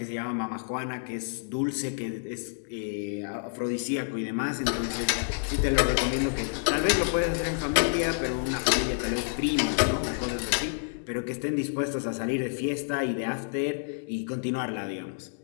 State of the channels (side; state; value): right; silent; digital silence